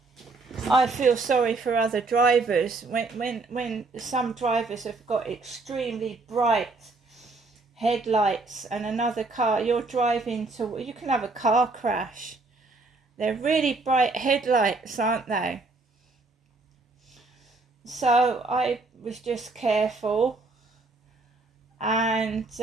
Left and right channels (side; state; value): left; quieter; 3.6 dB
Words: I feel sorry for other drivers when some drivers have got extremely bright headlights and another car, you're driving to, you can have a car crash. They're really bright headlights, aren't they? So I was just careful, and